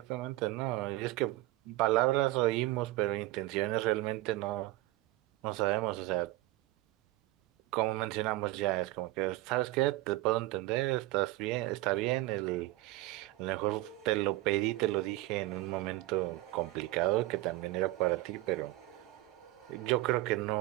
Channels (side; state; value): left; quieter; 18.3 dB